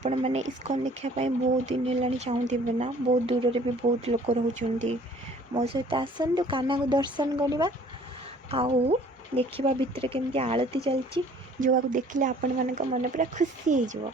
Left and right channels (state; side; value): normal; both; correlation 0.54